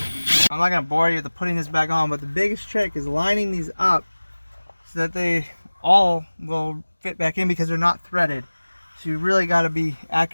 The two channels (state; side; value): inverted; both; correlation -1.00